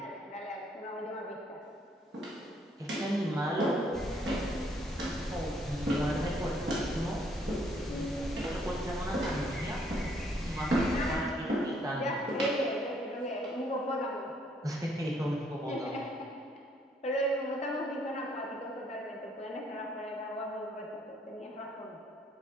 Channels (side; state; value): both; normal; correlation 0.68